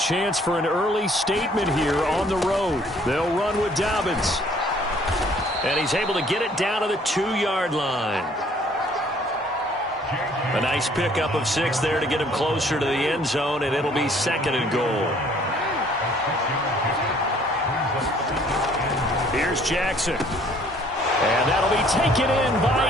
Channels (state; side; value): normal; both; correlation 0.59